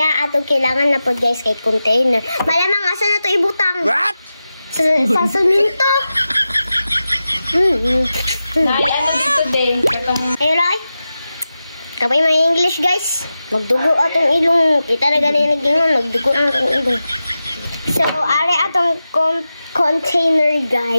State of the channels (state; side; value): inverted; both; correlation -0.93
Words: atong kailangan na po guys kay container. Malamang asa na to ibutang. What? Sa suminto. Nay, ano dito din? Ayun lang. Kapay may English guys. Magdugo atong ilong. Kita na ganyan nagingon. Magdugo ang atong ilong. So, are atong container